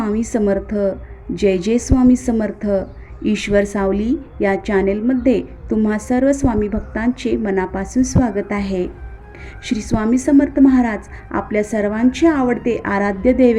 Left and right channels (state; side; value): identical; both; correlation 1.00